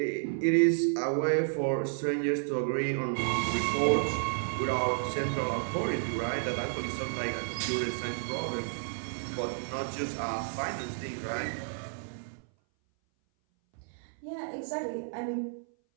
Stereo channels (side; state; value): left; silent; 57 dB below the other